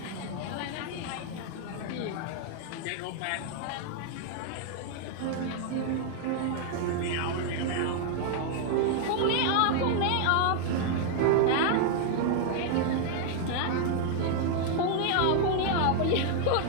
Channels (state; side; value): different; both; correlation 0.00